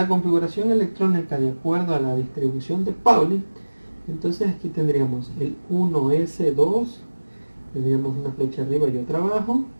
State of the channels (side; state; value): both; inverted; correlation -1.00